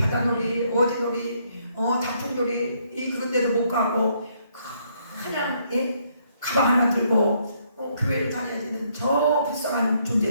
어디놀이, 단풍놀이, 그런 데도 못 가고, 그냥 가방 하나 들고 교회를 다녀야 되는 저 불쌍한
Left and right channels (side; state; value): both; inverted; correlation -0.71